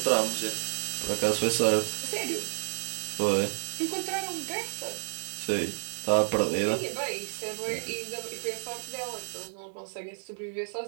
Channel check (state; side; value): silent; left; 58 dB below the other